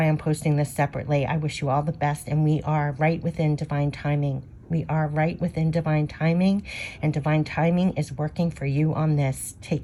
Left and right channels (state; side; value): identical; both; correlation 1.00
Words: I'm posting this separately. I wish you all the best, and we are right within divine timing. We are right within divine timing, and divine timing is working for you on this. Take